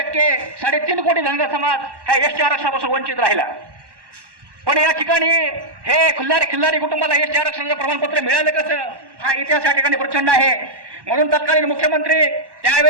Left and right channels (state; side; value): late; left; 1.1 ms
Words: कोटी धनगर समाज हा एसटी आरक्षणापासून वंचित राहिला। पण या ठिकाणी हे खिल्लारी कुटुंबाला एसटी आरक्षणाचं प्रमाणपत्र मिळालं कसं, हा इतिहास या ठिकाणी प्रचंड आहे। म्हणून तत्कालीन मुख्यमंत्री